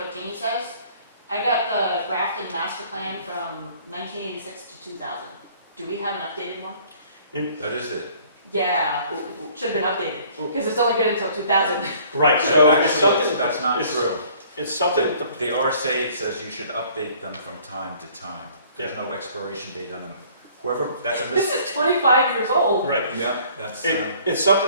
Jeannie says, I got the Grafton master plan from 1986 to 2000. Do we have an updated one? That is it. Yeah, should have been updated, because it's only good until 2000. Right, so it's Actually, something, that's not it's- true. it's something, The RSA says you should update them from time to time. There's no expiration date on them. Whoever, that's a This is 25 years old. right. Yeah, that's, It's something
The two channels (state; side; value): inverted; both; correlation -0.56